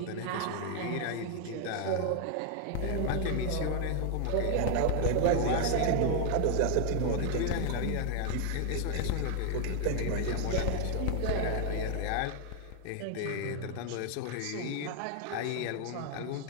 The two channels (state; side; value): different; both; correlation 0.00